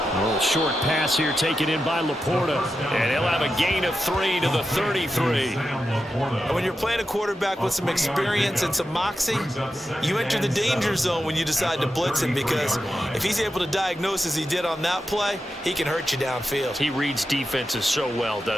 A little short pass here taken in by Laporta. And he'll have a gain of 3 to the 33. And when you're playing a quarterback with some experience and some moxie, you enter the danger zone when you decide to blitz him because if he's able to diagnose as he did on that play, he can hurt you downfield. He reads defenses so well,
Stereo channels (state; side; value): normal; both; correlation 0.89